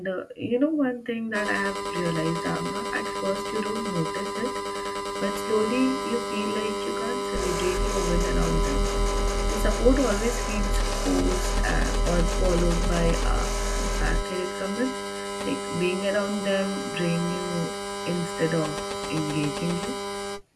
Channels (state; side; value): identical; both; correlation 1.00